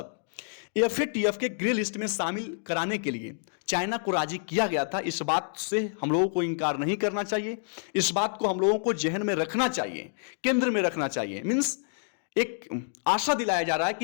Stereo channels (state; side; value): silent; right; digital silence